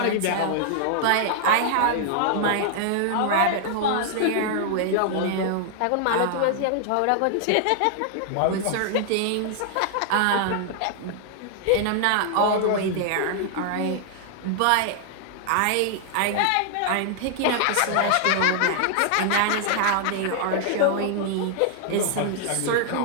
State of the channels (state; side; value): different; both; correlation 0.00